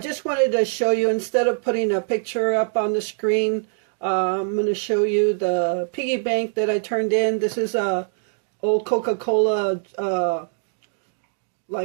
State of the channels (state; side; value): silent; left; digital silence